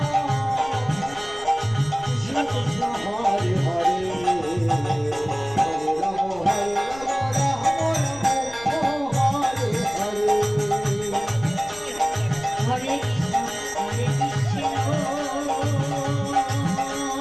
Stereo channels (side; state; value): left; noise; rumble, 19 dB below the sound